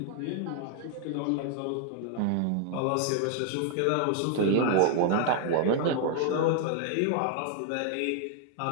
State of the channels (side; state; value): both; different; correlation 0.00